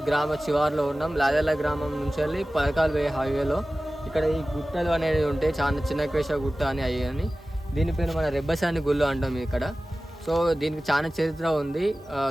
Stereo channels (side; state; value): both; normal; correlation 0.96